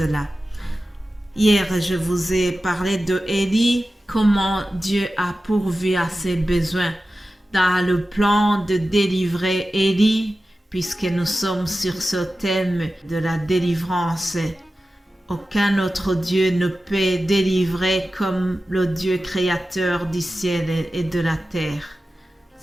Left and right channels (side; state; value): both; normal; correlation 0.94